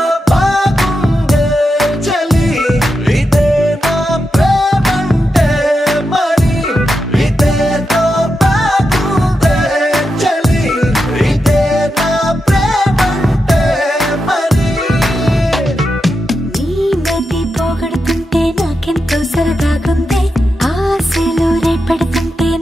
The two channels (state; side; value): normal; both; correlation 0.87